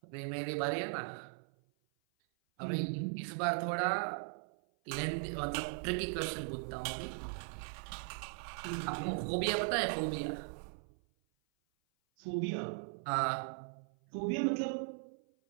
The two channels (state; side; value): silent; left; 52 dB below the other